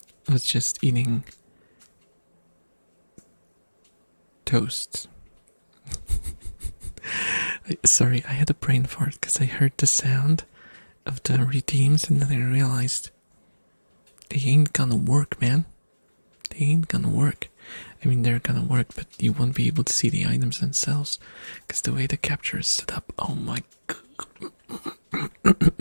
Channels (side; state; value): both; inverted; correlation -1.00